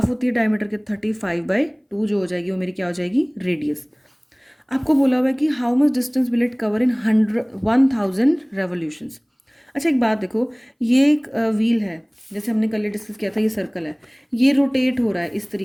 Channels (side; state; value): both; identical; correlation 1.00